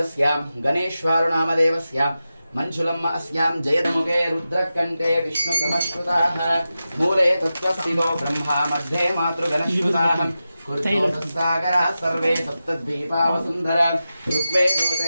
गणेश्वर नामदेवस्यां मंजुलम् अस्यां जयदमुखे रुद्रकण्ठे विष्णु समश्रुताः मूले तत्त्वस्थितो ब्रह्मा मध्ये मातृगणश्रुताः कुरुतोसागरा सर्वे सप्तद्वीपावसुन्धरा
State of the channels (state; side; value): inverted; both; correlation -0.92